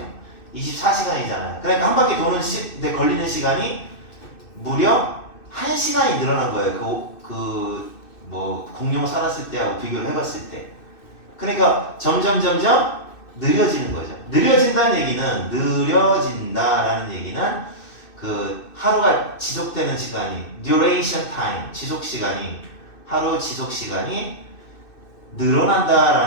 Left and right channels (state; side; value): late; right; 2.6 ms